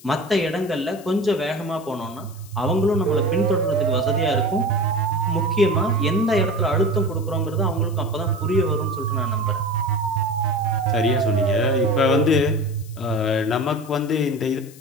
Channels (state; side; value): noise; left; hiss, 22 dB below the sound